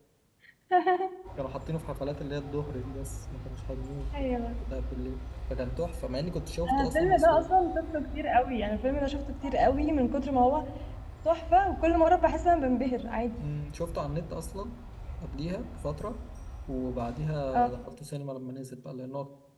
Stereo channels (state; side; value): identical; both; correlation 1.00